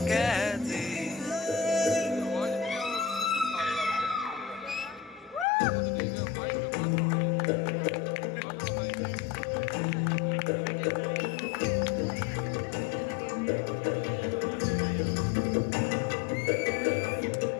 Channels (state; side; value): drops out; right; at 5.5 s